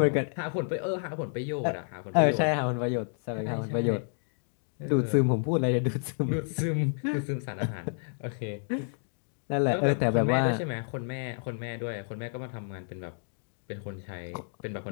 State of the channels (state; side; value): silent; right; digital silence